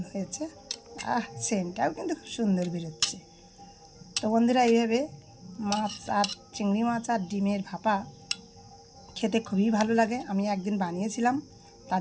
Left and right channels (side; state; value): both; identical; correlation 1.00